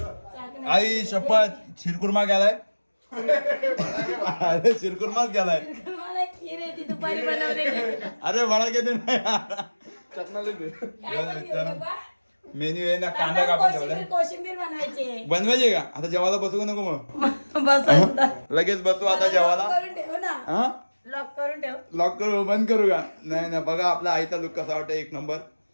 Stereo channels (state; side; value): inverted; both; correlation -1.00